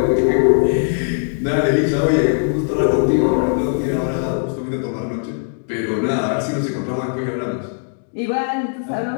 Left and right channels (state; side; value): silent; right; 66 dB below the other